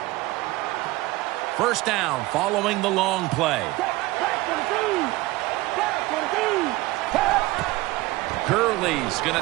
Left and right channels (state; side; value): quieter; left; 19.7 dB